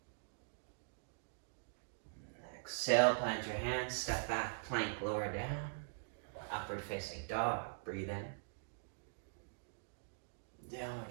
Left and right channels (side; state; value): left; silent; digital silence